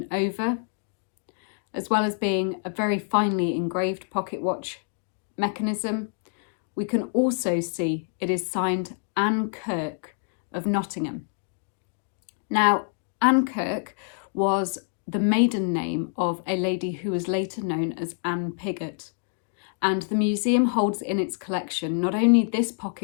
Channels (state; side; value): silent; right; 57 dB below the other